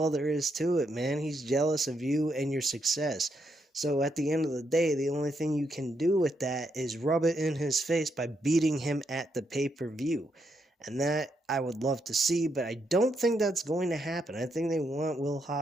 there is to it, man. He's jealous of you and your success. So at the end of the day, the only thing you can do with that is rub it in his face by beating him at the pay-per-view. And that I would love to see, but I don't think that's going to happen. I think they want Will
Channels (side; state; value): both; normal; correlation 0.79